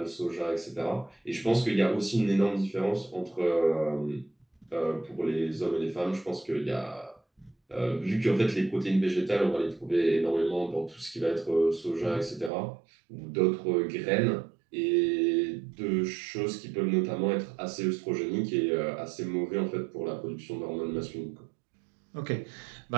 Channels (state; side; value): drops out; left; at 12.5 s